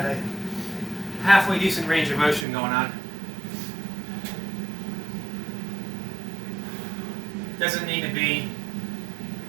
a halfway decent range of motion going on. Doesn't need to be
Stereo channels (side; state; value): left; drops out; at 2.5 s